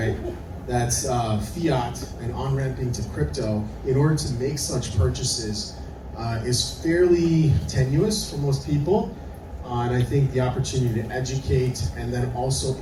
That's fiat and on-ramping to crypto in order to make such purchases is fairly tenuous for most people. And I think the opportunity to educate and then also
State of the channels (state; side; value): identical; both; correlation 1.00